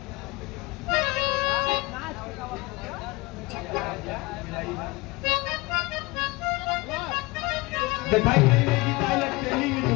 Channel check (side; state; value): right; quieter; 23.0 dB